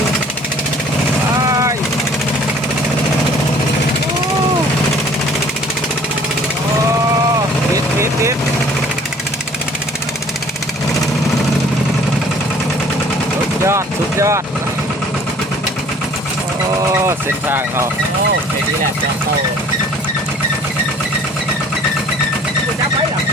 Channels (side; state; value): both; normal; correlation 0.53